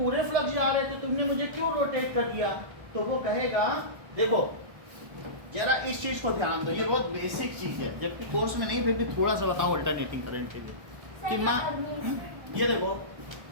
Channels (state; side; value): late; left; 1.1 ms